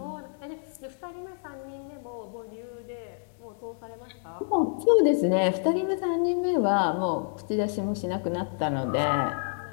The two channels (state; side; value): silent; right; digital silence